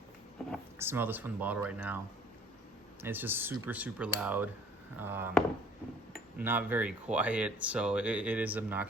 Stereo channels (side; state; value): both; normal; correlation 0.55